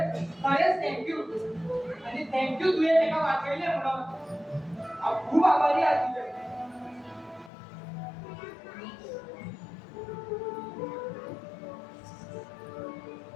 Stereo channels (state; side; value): drops out; right; at 7.5 s